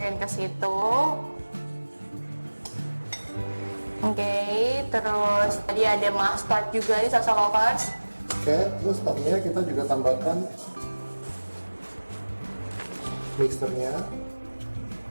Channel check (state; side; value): inverted; both; correlation -1.00